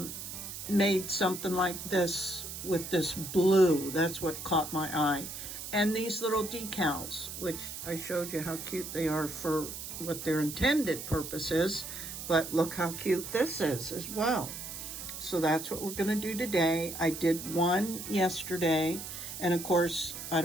made something like this with this blue. That's what caught my eye. And these little decals, which I showed you how cute they are for what their intended purpose is, but look how cute this is as well. So that's what we're gonna do today. I did one yesterday, and of course, I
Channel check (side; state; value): right; noise; hiss, 8 dB below the sound